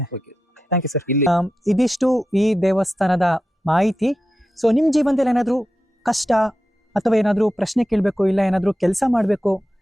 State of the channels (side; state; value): both; normal; correlation 0.91